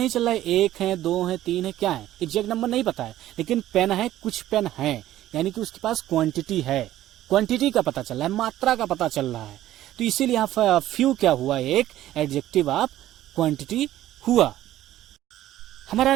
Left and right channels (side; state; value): left; quieter; 13.8 dB